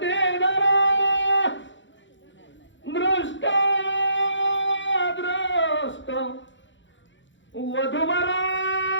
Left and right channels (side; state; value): right; late; 0.54 ms